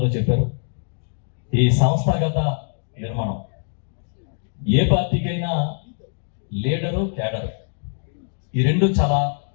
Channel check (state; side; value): silent; right; digital silence